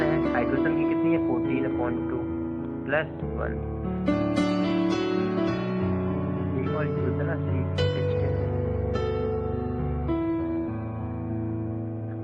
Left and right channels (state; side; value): identical; both; correlation 1.00